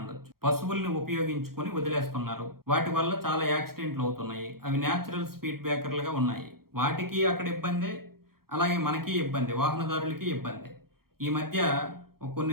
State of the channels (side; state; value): left; late; 0.94 ms